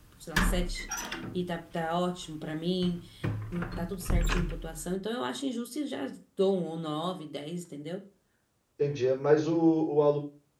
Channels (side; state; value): both; identical; correlation 1.00